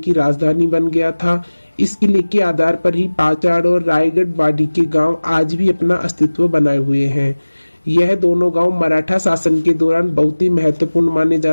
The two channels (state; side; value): inverted; both; correlation -1.00